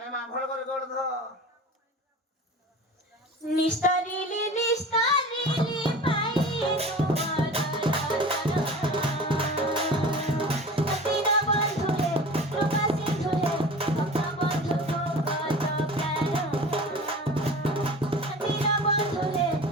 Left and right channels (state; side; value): normal; both; correlation 0.37